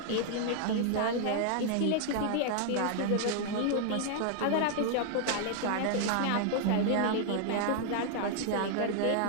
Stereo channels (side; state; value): both; different; correlation 0.00